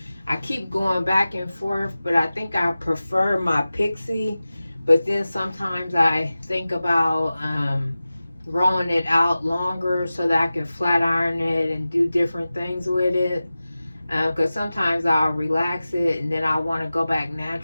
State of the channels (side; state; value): both; inverted; correlation -0.96